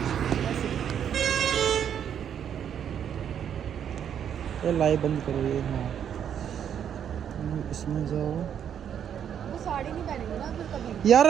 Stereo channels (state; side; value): quieter; left; 8.9 dB